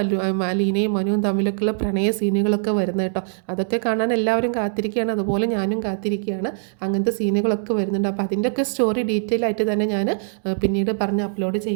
അലീനയും മനുവും തമ്മിലൊക്കെയുള്ള പ്രണയ സീനുകളൊക്കെ വരുന്നത് കേട്ടോ. അതൊക്കെ കാണാൻ എല്ലാവരും കാത്തിരിക്കുകയാണ്, അതുപോലെ ഞാനും കാത്തിരിക്കുകയാണ്. അങ്ങനത്തെ സീനുകളൊക്കെ വരുന്നുണ്ട്. അപ്പോൾ അതിൻ്റെയൊക്കെ സ്റ്റോറി ഡീറ്റെയിൽ ആയിട്ട് തന്നെ ഞാൻ പിന്നീട് പറഞ്ഞ് അപ്ലോഡ്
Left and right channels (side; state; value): left; silent; digital silence